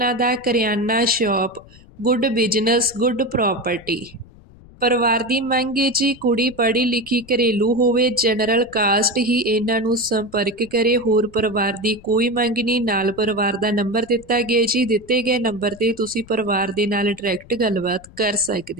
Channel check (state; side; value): noise; left; rumble, 23 dB below the sound